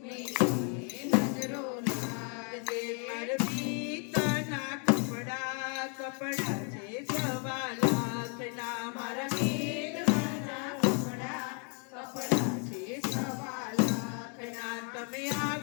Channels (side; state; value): right; quieter; 38.6 dB